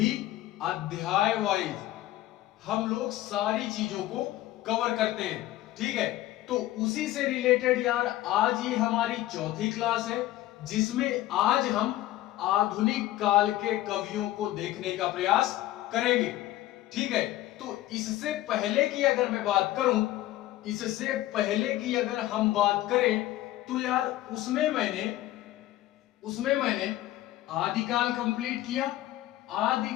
अध्याय वाइज हम लोग सारी चीजों को कवर करते हैं। ठीक है, तो उसी से रिलेटेड यार आज ये हमारी 4थी क्लास है, जिसमें आज हम आधुनिक काल के कवियों को देखने का प्रयास करेंगे। ठीक है, तो इससे पहले की अगर मैं बात करूं, इससे पहले की अगर हम बात करें तो यार उसमें मैंने आदिकाल कंप्लीट किया।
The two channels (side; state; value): right; quieter; 15.1 dB